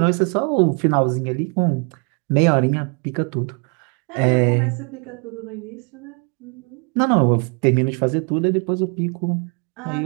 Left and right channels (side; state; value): left; quieter; 37.2 dB